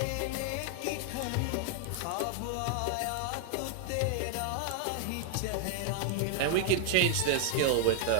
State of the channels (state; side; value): different; both; correlation 0.00